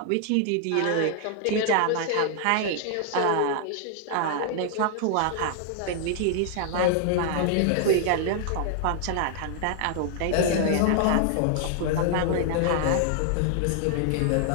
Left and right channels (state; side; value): different; both; correlation 0.00